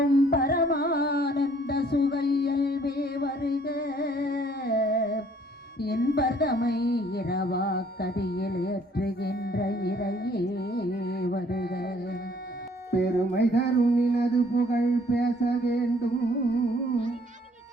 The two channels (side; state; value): both; normal; correlation 0.61